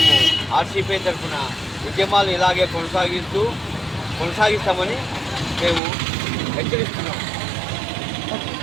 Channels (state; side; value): drops out; left; at 5.8 s